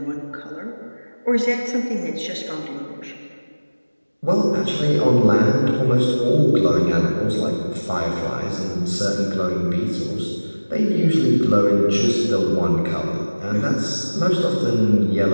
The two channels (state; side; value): inverted; both; correlation -1.00